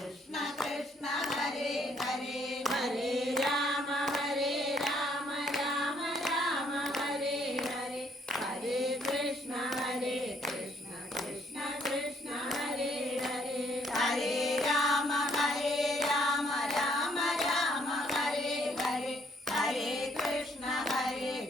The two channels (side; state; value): both; normal; correlation 0.67